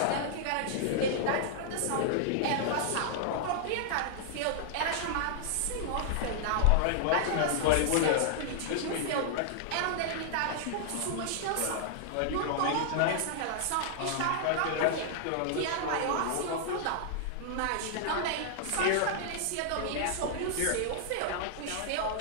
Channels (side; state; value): both; different; correlation -0.01